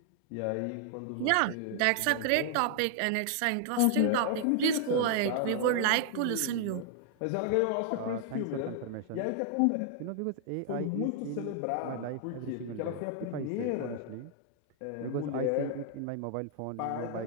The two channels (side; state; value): both; different; correlation 0.00